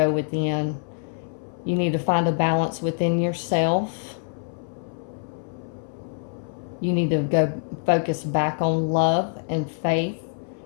within. You need to find a balance within yourself. You need to go focus back on love and faith.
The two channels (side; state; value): right; silent; 62 dB below the other